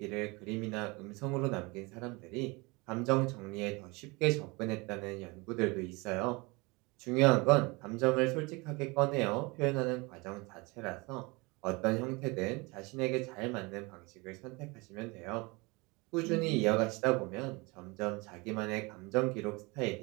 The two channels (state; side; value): quieter; left; 26.1 dB